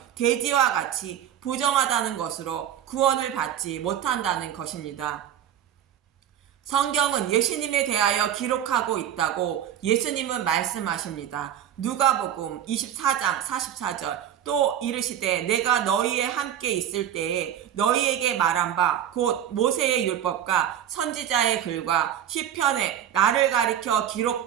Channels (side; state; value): left; quieter; 10.4 dB